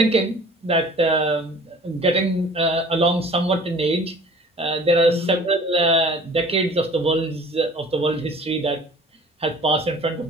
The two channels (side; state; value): both; normal; correlation 0.47